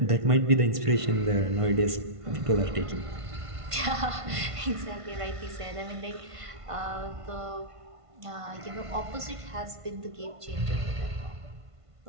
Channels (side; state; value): left; late; 1.5 ms